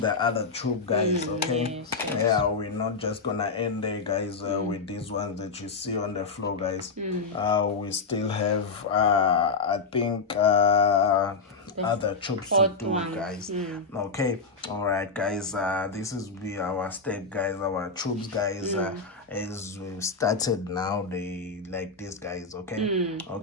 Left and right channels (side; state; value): right; quieter; 4.3 dB